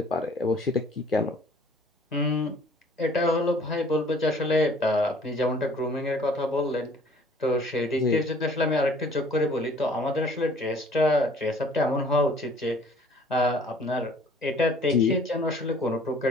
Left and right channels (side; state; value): both; normal; correlation 0.54